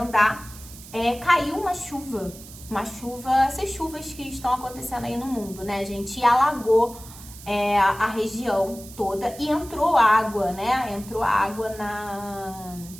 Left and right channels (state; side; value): noise; right; hiss, 17 dB below the sound